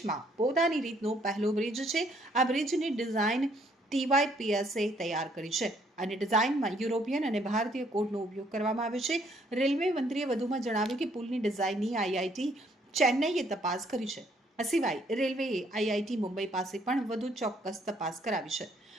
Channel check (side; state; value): both; normal; correlation 0.66